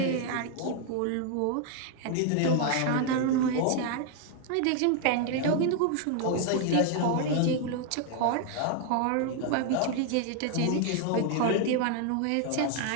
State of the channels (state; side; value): different; both; correlation 0.00